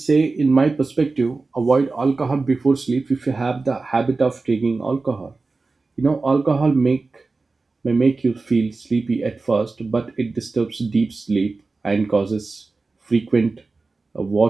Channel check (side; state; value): left; quieter; 3.8 dB